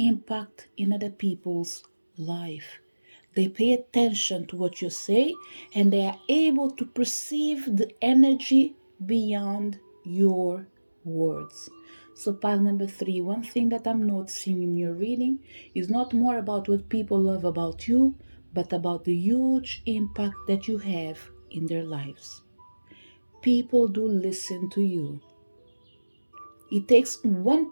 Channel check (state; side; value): inverted; both; correlation -1.00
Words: in other people's life. They pay attention to what you say and they are able to perceive the energy beyond your words. So, pile number three, one thing that I'm noticing in your reading is not more about what people love about you, but about the huge impact that you have in their lives. People do listen to you. It takes one